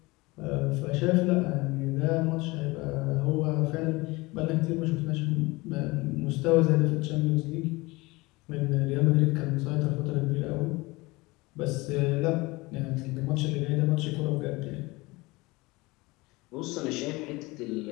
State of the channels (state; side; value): quieter; right; 22.8 dB